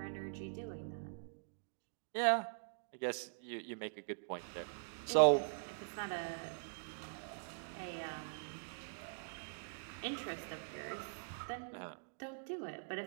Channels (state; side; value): silent; left; digital silence